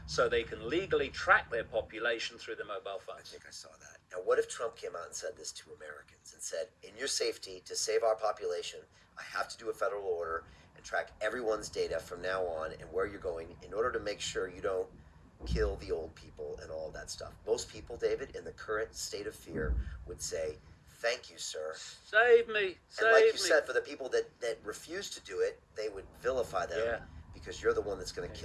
so they can legally track their population through their mobile I phones. think I saw that. Now, what if Trump came out and said this to Americans and said, in your safety, to save our population, I have to do a federal order and track everyone's data from now on and where you're going in order to make sure you don't kill the old people and all that stuff. Most people, David, in the current state of fear would say, thank you, sir. Save me, and like you said, for the people that refuse to do it, they would vilify them. Yeah. Because you're the one that's going to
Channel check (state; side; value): identical; both; correlation 1.00